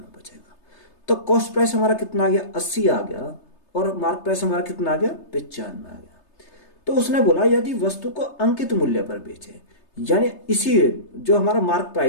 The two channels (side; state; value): right; late; 3.3 ms